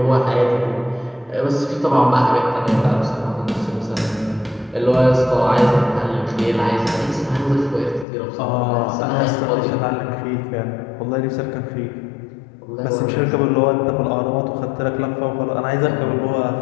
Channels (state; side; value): drops out; right; at 8.1 s